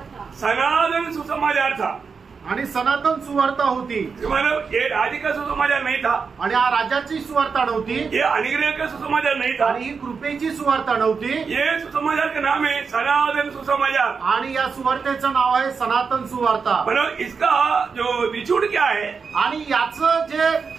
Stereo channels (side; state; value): left; quieter; 5.4 dB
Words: था. सनातन सुसमाचार था. आणि सनातन सुवार्ता होती. मतलब ये राज्य का सुसमाचार नहीं था. आणि हा राज्याची सुवार्ता नव्हती. ये अनुग्रह का सुसमाचार नहीं था. आणि ही कृपेची सुवार्ता नव्हती. ये सुसमाचार का नाम है सनातन सुसमाचार. आणि या सुवार्तेचं नाव आहे सनातन सुवार्ता. मतलब इसका जो निचोड़ क्या है, आणि याचं जे